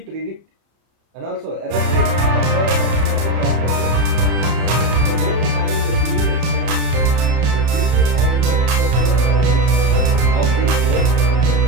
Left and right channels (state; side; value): late; left; 31 ms